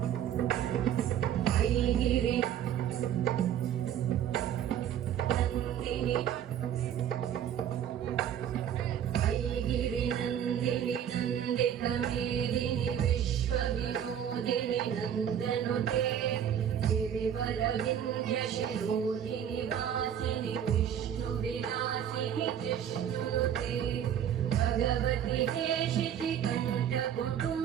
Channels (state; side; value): quieter; left; 9.5 dB